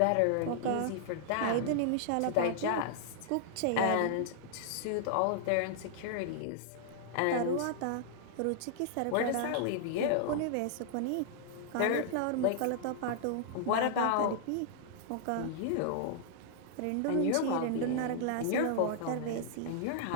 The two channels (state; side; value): different; both; correlation -0.01